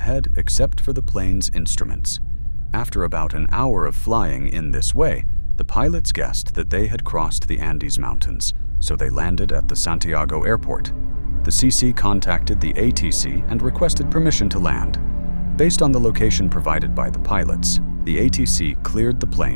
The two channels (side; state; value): both; inverted; correlation -1.00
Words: except for the plane's instruments. After about an hour of flying in this way, the pilots guessed that they had crossed the Andes Mountains, so they landed at the Santiago airport. The CC contacted the ATC and requested permission to land. Based on the location provided by the pilots, the ATC cleared the